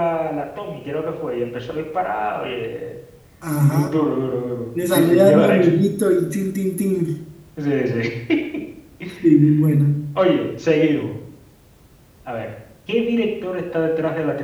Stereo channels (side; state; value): both; identical; correlation 1.00